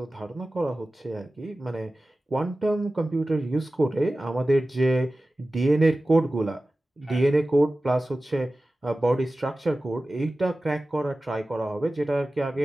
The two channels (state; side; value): normal; both; correlation 0.96